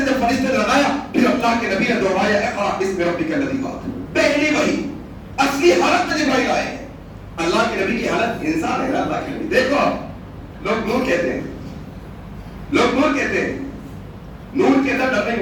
جب فرشتے نے لگایا، پھر اللہ کے نبی نے دہرایا اقرأ باسم ربک الذی خلق. پہلی وحی اصلی حالت میں جبرائیل آئے. اللہ کے نبی کی حالت انسان ہے. اللہ کے نبی دیکھو، آپ لوگ نور کہتے ہیں، لوگ نور کہتے ہیں، نور کے اندر ڈر نہیں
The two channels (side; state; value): both; identical; correlation 1.00